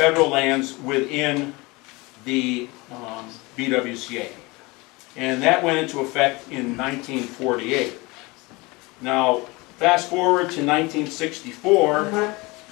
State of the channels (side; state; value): right; quieter; 24.3 dB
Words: lands within the BWCA. And that went into effect in 1948. Now, fast forward to 1964,